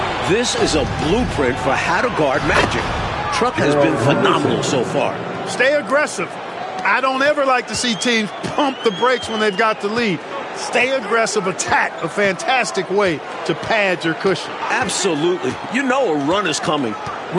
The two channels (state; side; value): identical; both; correlation 1.00